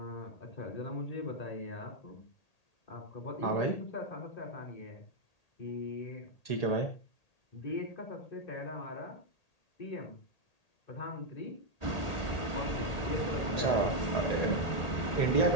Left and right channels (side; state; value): right; late; 1.8 ms